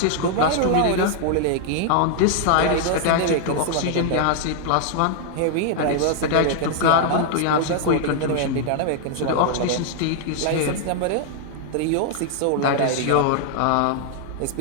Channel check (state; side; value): different; both; correlation 0.00